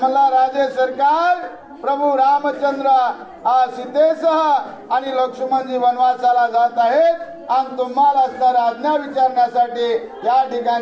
मला राजे सरकार प्रभू रामचंद्र सीतेसह आणि लक्ष्मणजी वनवासाला जात आहेत आणि तुम्हाला असणारा आज्ञा विचारण्यासाठी या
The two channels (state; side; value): identical; both; correlation 1.00